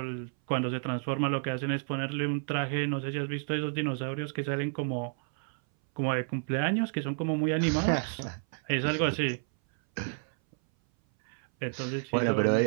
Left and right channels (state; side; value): silent; left; 58 dB below the other